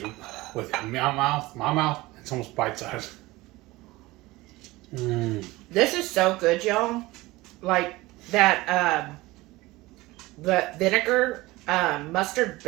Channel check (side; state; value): left; quieter; 20.0 dB